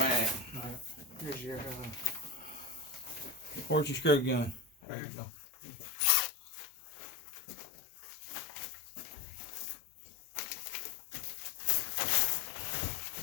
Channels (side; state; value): right; drops out; at 4.7 s